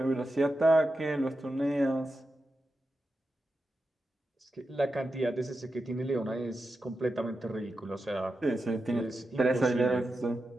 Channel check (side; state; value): both; normal; correlation 0.90